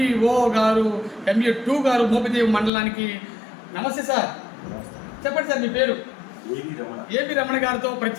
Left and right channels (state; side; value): drops out; right; at 2.7 s